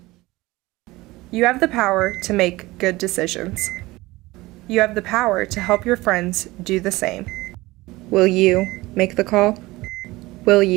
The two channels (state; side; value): quieter; left; 20.0 dB